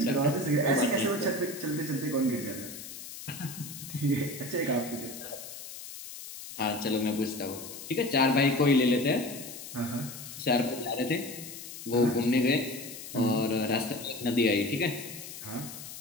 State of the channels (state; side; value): noise; left; hiss, 12 dB below the sound